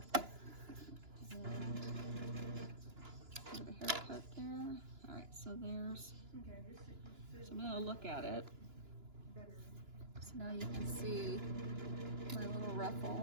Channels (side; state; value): left; late; 2.9 ms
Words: Haircut there. Alright, so there's, so I'm going to look at it. So now you can see my little ruffle